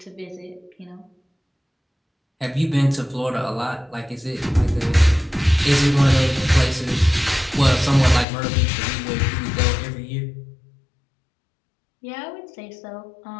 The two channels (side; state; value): right; drops out; at 8.2 s